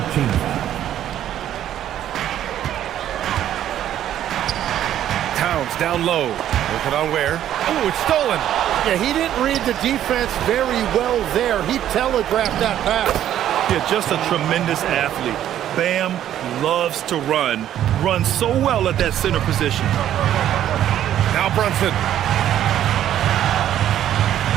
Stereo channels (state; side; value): quieter; left; 11.3 dB